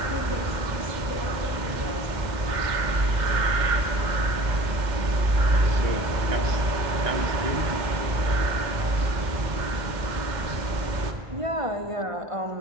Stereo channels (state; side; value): late; left; 2.1 ms